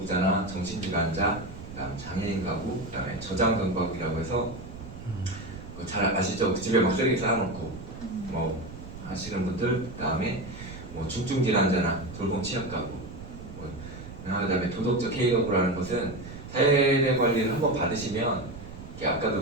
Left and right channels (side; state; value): right; noise; rumble, 13 dB below the sound